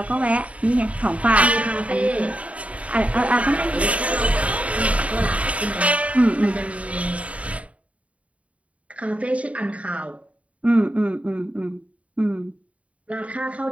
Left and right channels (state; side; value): late; left; 0.066 ms